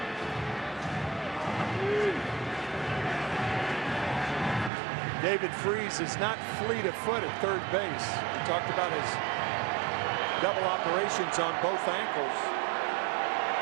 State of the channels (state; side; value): drops out; left; at 4.7 s